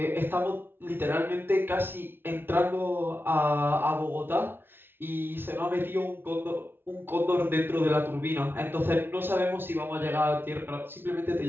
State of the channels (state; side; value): late; left; 0.11 ms